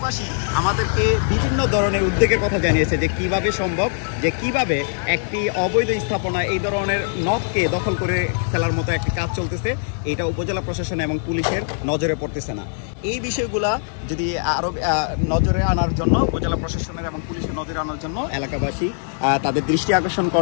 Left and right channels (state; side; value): silent; right; 59 dB below the other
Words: আমাদেরকে বিভিন্ন ধরনের উদ্যোগের কথা জানিয়েছে যে কিভাবে সম্ভব, যে কিভাবে একটি অবৈধ স্থাপনা এই ধরনের নদকে দখল করে ফেলার মতো একটি কাজ চলতেছে, এটা উপজেলা প্রশাসন এবং পুলিশের নজরে পড়তেছে না। এই বিষয়গুলা যদি আরও নজরে আনার জন্য উপজেলা প্রশাসনের এবং পুলিশের নজরে আনার জন্য এলাকাবাসী তাদের দৃষ্টি আকর্ষণ